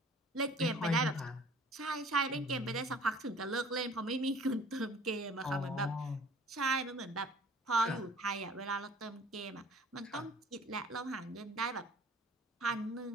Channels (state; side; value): normal; both; correlation 0.50